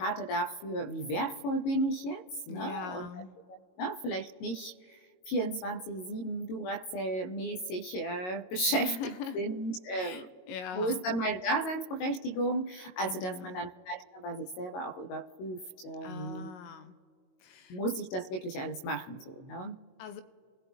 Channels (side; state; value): right; late; 22 ms